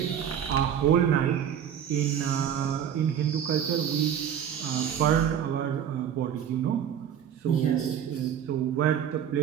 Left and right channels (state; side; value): quieter; left; 9.1 dB